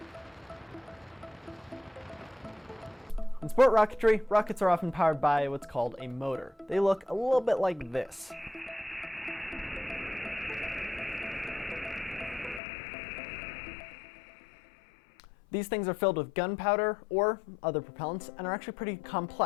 In sport rocketry, rockets are often powered by what's called a motor. They look a little bit like this. These things are filled with gunpowder or other propellants and are actually pretty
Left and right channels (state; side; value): drops out; right; at 12.6 s